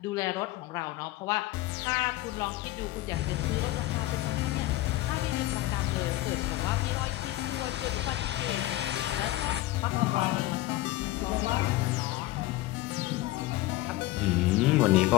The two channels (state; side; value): quieter; right; 17.3 dB